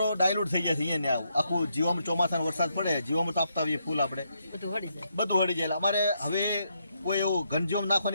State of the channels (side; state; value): both; inverted; correlation -0.78